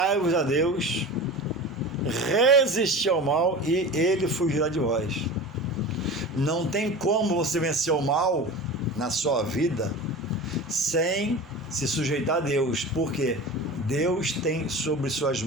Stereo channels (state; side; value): normal; both; correlation 0.33